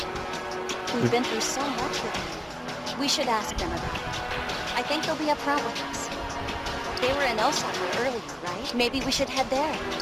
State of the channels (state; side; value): identical; both; correlation 1.00